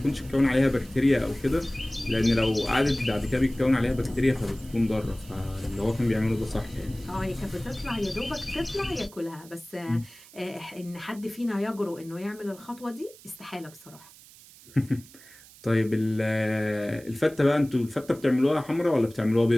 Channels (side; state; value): right; noise; hiss, 22 dB below the sound